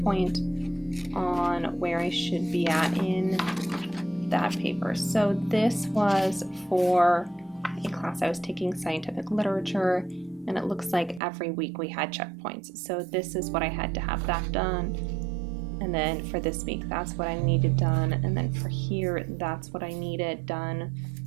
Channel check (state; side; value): drops out; left; at 11.2 s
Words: on where I should be at in that paper. So this was for a class I was taking, scientific literature, And it looks like every week we had checkpoints. So this is what I had to have that done. And then for this week, that's what I needed done. And then for here, that's what I needed done.